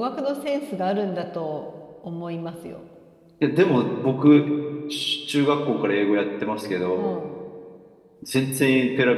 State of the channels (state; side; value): identical; both; correlation 1.00